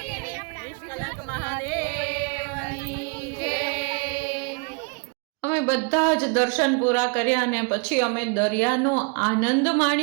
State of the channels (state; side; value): quieter; left; 34.0 dB